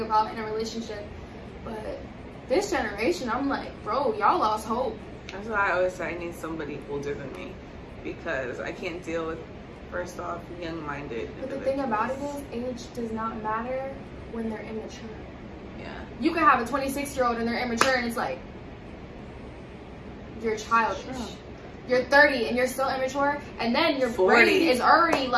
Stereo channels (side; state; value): both; identical; correlation 1.00